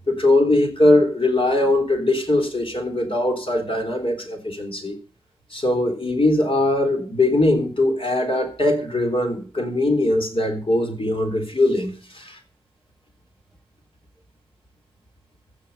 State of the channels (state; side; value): normal; both; correlation 0.80